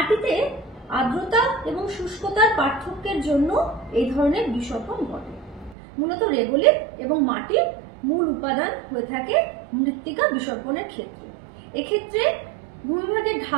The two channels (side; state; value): left; drops out; at 5.8 s